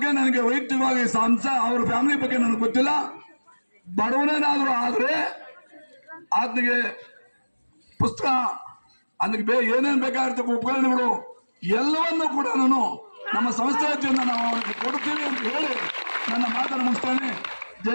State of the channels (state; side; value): inverted; both; correlation -1.00